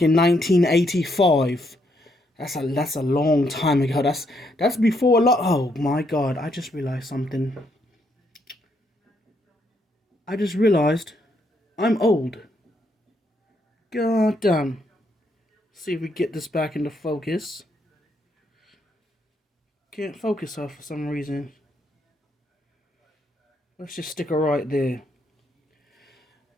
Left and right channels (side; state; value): both; normal; correlation 0.75